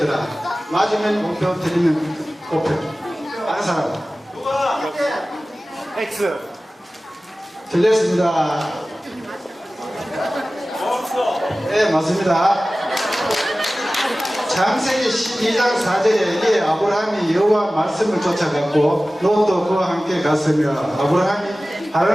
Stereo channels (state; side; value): normal; both; correlation 0.97